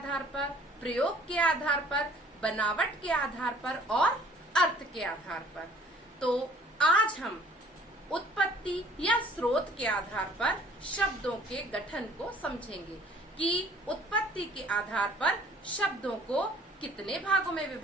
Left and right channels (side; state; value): both; normal; correlation 0.55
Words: पर, प्रयोग के आधार पर, बनावट के आधार पर और अर्थ के आधार पर। तो आज हम उत्पत्ति या स्रोत के आधार पर शब्दों के गठन को समझेंगे कि उत्पत्ति के आधार पर शब्दों को कितने भागों में